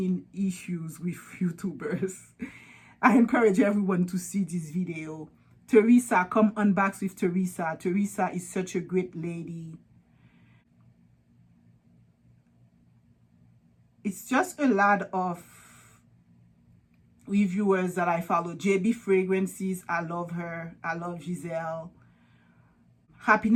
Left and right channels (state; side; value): identical; both; correlation 1.00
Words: issues with YouTubers. I encourage everyone to see this video. Teresa, come unbox with Teresa. Teresa is such a great lady. It's just a lot of reviewers that I follow. JB Fragrances, I love her. I love Giselle.